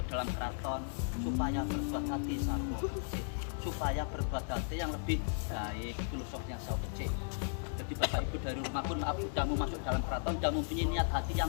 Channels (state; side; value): silent; right; digital silence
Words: dalam keraton supaya berbuat hati sawo kecil, supaya berbuat hati yang lebih baik, filosofinya sawo kecil. Jadi bapak ibu dari rumah pun maaf sudah mau masuk dalam keraton, sudah mempunyai niat hati